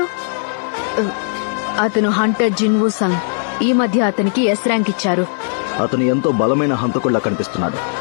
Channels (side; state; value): right; silent; 59 dB below the other